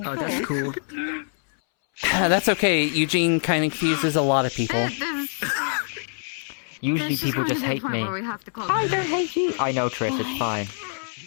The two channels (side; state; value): right; silent; 62 dB below the other